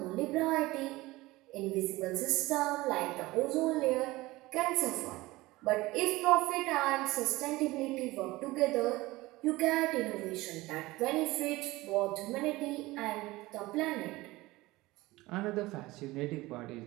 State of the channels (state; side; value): quieter; left; 19.7 dB